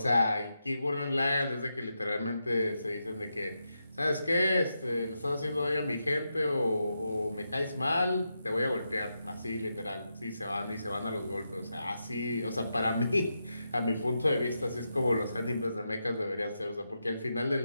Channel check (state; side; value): inverted; both; correlation -0.86